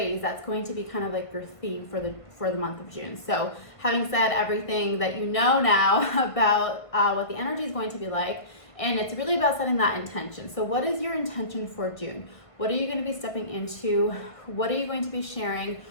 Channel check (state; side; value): late; right; 1.5 ms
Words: that's going to be kind of like your theme for the month of June. So having said everything that you know now about what the energy is going to be like, and it's really about setting that intention. So what is your intention for June? What are you going to be stepping into? What are you going to be sharing?